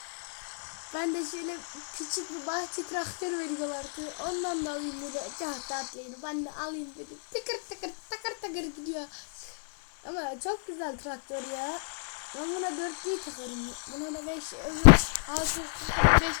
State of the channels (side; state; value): right; silent; digital silence